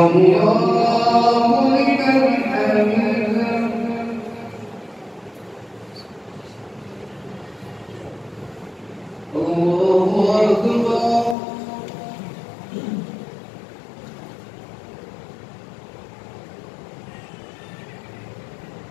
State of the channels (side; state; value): right; drops out; at 11.4 s